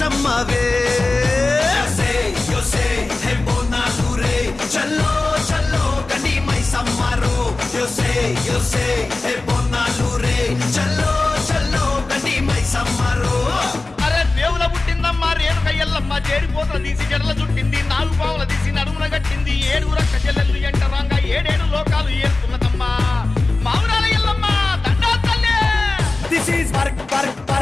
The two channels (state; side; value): quieter; right; 3.3 dB